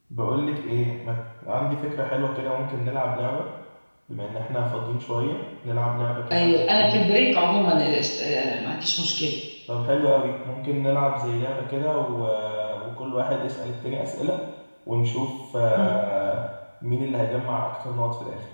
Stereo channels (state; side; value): inverted; both; correlation -1.00